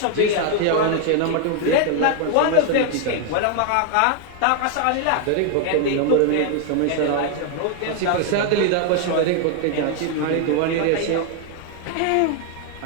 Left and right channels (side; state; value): both; different; correlation 0.00